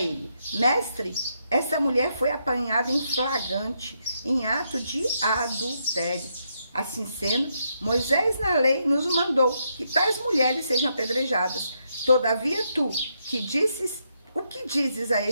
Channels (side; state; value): both; inverted; correlation -0.79